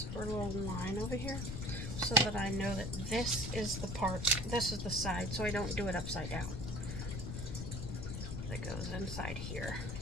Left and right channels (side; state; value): left; noise; rumble, 4 dB below the sound